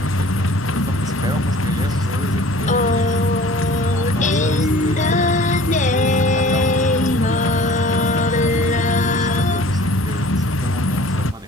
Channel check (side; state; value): both; normal; correlation 0.47